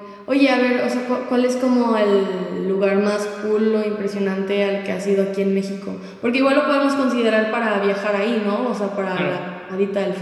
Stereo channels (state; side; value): identical; both; correlation 1.00